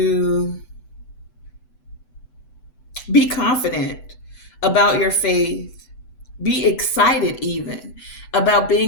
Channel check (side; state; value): right; late; 8.0 ms